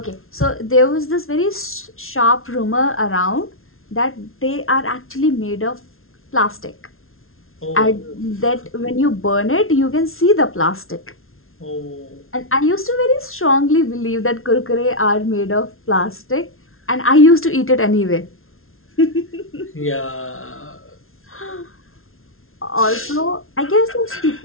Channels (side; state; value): right; late; 0.61 ms